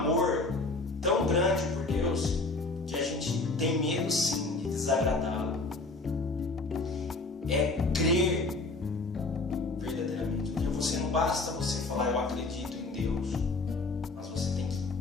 tão grande por Deus que a gente tem medo sim de desagradá-lo. É crer verdadeiramente. Porque você não basta você falar eu acredito em Deus, mas você tem que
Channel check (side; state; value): right; quieter; 3.4 dB